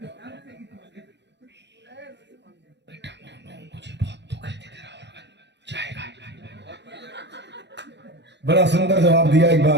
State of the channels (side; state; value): left; late; 0.51 ms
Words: मुझे बहुत दुख है तेरा ऑर्गन जाएगा। बड़ा सुंदर जवाब दिया। एक